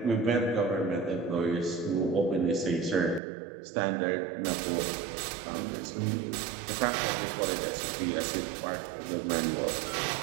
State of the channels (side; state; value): left; drops out; at 3.2 s